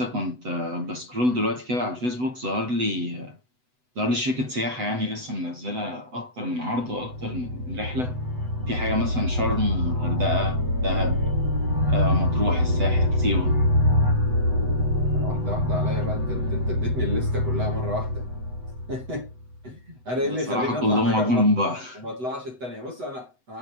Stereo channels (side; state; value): left; late; 8.0 ms